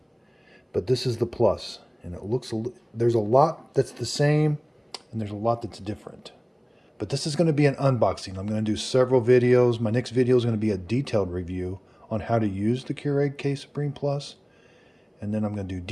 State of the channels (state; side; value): identical; both; correlation 1.00